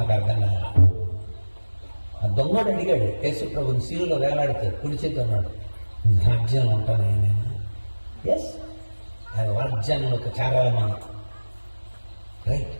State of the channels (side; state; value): both; inverted; correlation -1.00